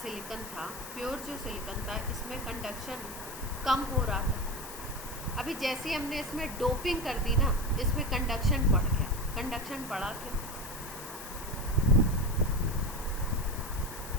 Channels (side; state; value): left; noise; hiss, 12 dB below the sound